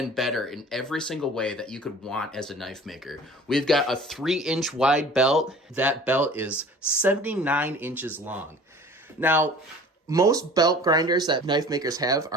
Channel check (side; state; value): both; normal; correlation 0.45